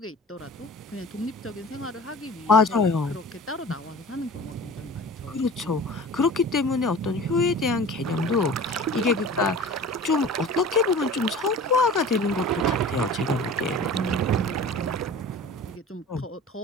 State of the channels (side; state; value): both; normal; correlation 0.40